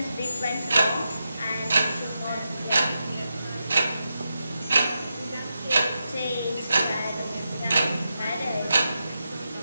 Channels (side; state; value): both; inverted; correlation -0.88